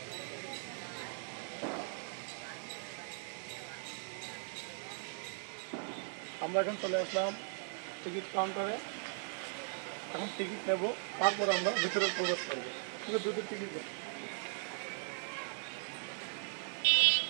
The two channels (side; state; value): left; silent; 52 dB below the other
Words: আমরা এখন চলে আসলাম টিকিট কাউন্টারে। এখন টিকিট নেব, তারপর আমরা ভিতরে প্রবেশ করবো। কিন্তু দুটো টিকিট দেব।